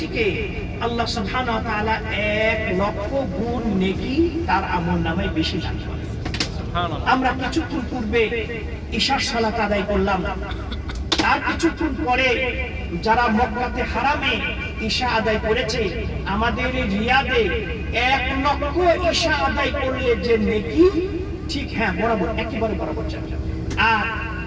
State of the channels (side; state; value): both; identical; correlation 1.00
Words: থেকে আল্লাহ সুবহানাহু ওয়া তাআলা 1,00,000 গুণ নেকি তার আমলনামায় বেশি দান করে। আমরা কিছুক্ষণ পূর্বে ইশার সালাত আদায় করলাম, তার কিছুক্ষণ পরে যারা মক্কাতে হারামে ঈশা আদায় করেছে, আমাদের রিয়াদে 1,00,000 ঈশা আদায় করলে যে নেকি, ঠিক হ্যাঁ বরাবর একেবারে বরাবর যাবে। আর